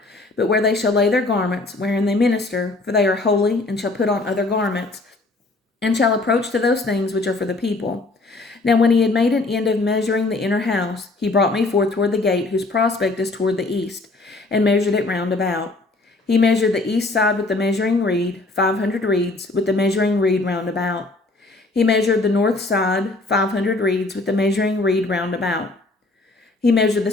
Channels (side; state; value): right; quieter; 3.2 dB